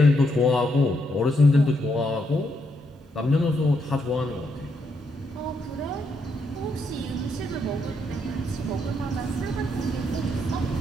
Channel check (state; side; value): normal; both; correlation 0.78